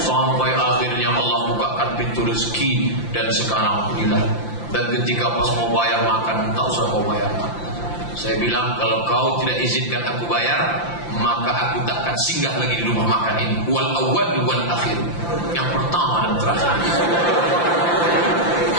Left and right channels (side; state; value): right; late; 5.8 ms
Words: akhirnya Allah bukakan pintu rezeki dan sekarang inilah. Dan ketika pas mau bayar makan, tak usah mau bayar makan. Saya bilang kalau kau tidak izinkan aku bayar, maka aku tak akan singgah lagi di rumah makan ini. Wal awwal wal akhir. Yang pertama dan terakhir.